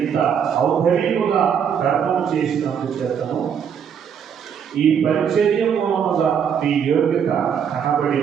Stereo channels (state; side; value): quieter; left; 7.8 dB